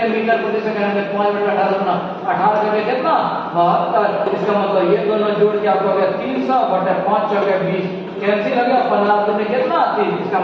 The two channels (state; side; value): identical; both; correlation 1.00